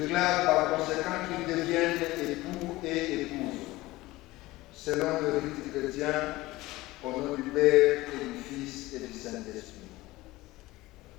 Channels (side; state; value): right; quieter; 19.0 dB